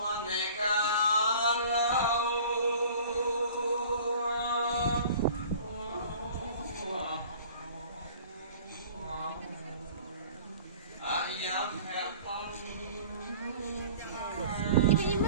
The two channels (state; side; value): inverted; both; correlation -0.46